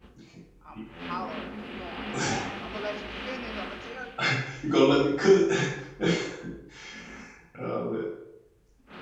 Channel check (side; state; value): both; identical; correlation 1.00